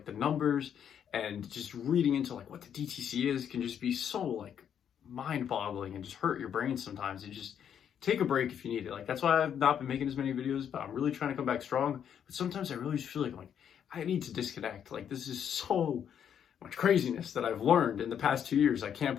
the numbers and just reading into like what the DTC is can just be so like mind-boggling and just hurt your brain sometimes. And just take a break if you need it. Like that's why I've not been making as many videos, but I'm really trying to come back strong. But sometimes I really just feel like I need to disconnect. Like this is so much craziness that I've learned in the past 2 years. I can't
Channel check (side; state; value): right; quieter; 8.7 dB